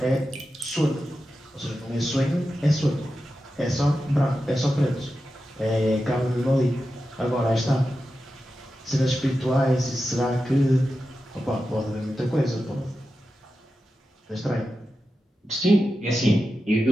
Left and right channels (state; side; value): normal; both; correlation 0.91